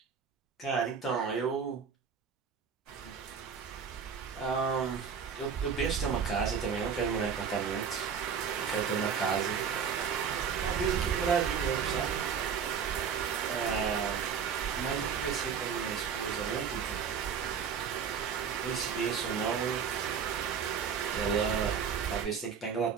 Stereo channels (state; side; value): quieter; left; 6.8 dB